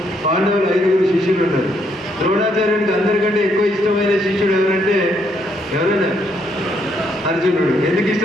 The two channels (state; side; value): normal; both; correlation 0.73